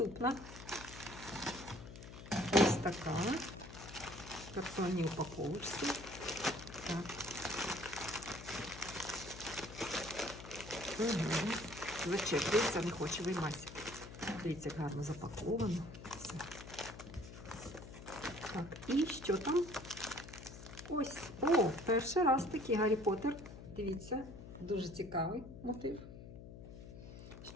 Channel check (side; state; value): left; noise; hum, 13 dB below the sound